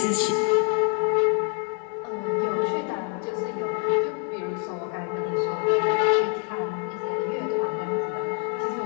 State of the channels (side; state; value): right; quieter; 39.1 dB